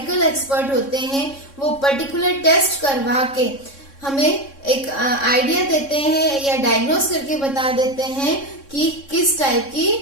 एक्सपर्ट होते हैं वो पर्टिकुलर टेस्ट करवा के हमें एक आइडिया देते हैं या डायग्नोस करके बता देते हैं कि किस टाइप की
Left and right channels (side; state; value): right; late; 3.6 ms